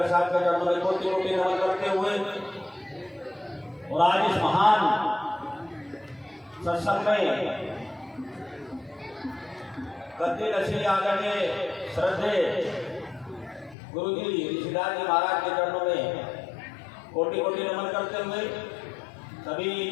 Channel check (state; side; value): drops out; right; at 13.8 s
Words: साहब के चरणों में कोटि कोटि नमन करते हुए, और आज इस महान सत्संग में गद्दी नशीली आदरणीय श्रद्धे गुरु जी ऋषिदास जी महाराज के चरणों में कोटि कोटि नमन करते हुए, सभी